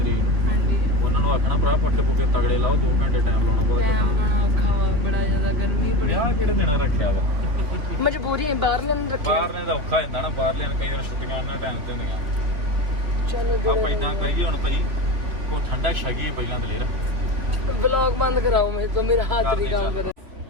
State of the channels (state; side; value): late; left; 3.1 ms